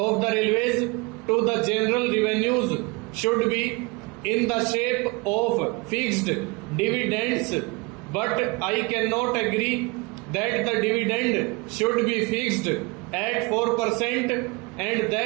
the railways to the general revenues should be in the shape of fixed dividends, but I cannot agree that the dividend should be fixed at 4%, and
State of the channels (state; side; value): quieter; left; 27.0 dB